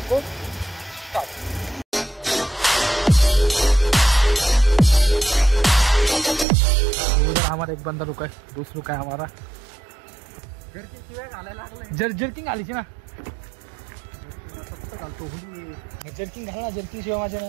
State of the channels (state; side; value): drops out; left; at 6.5 s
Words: को स्टार्ट। उधर हमारा एक बंदा रुका है, दोस्त रुका है हमारा। जर्किंग आली ना, जर्किंग घालना, जर्किंग शिवाय माझ्या नाही